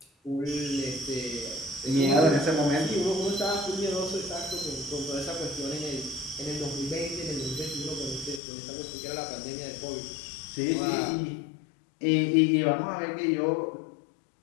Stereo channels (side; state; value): right; drops out; at 8.4 s